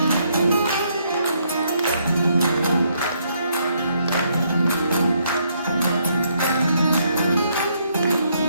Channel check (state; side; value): inverted; both; correlation -0.72